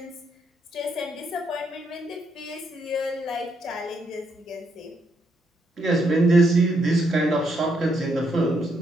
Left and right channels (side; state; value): both; normal; correlation 0.76